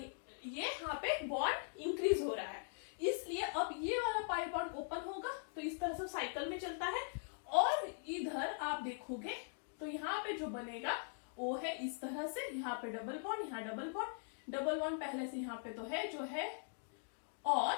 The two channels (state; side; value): silent; right; digital silence